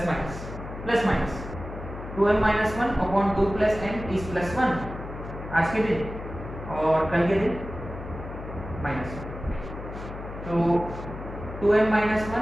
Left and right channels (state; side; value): noise; left; hum, 10 dB below the sound